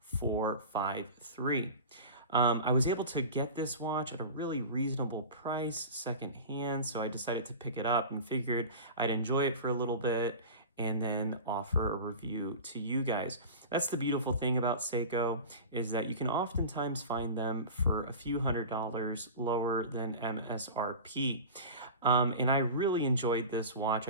453. I was able to get this watch at a really reasonable price secondhand, so I decided to pick it up and figured I'd enjoy it for a little bit and then offer a review to you guys. That's the beautiful thing about Seiko, is that you can oftentimes find them for a few $100s lower than MSRP. And I really enjoyed this watch.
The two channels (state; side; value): inverted; both; correlation -0.32